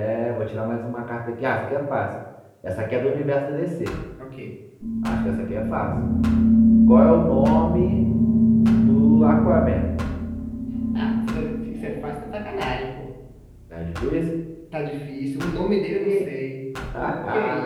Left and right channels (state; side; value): identical; both; correlation 1.00